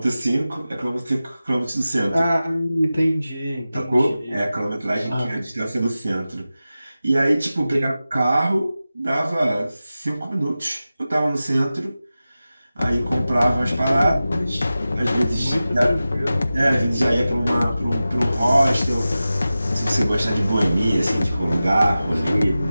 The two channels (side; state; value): both; inverted; correlation -0.95